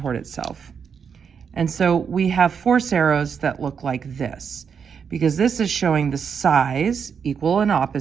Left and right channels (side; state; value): left; quieter; 6.7 dB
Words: itself. And so we have force arrows that look like this, because this is showing the size, equal and